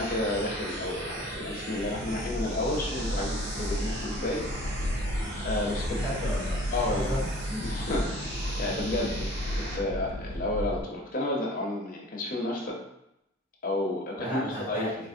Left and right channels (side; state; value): both; normal; correlation 0.46